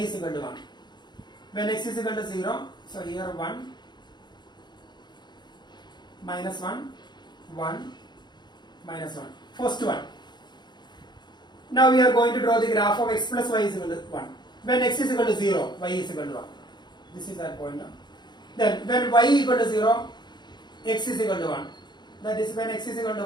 equal to 1. When x is equal to 0, so here 1, minus 1, 1, minus 1. First one. Now we are going to draw the graph of x plus y is equal to 1. When x is equal to 0, y is equal to 1. This is our point now. Then when y equal to 0, x is equal to 1. That is when x is equal to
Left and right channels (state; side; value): late; right; 0.21 ms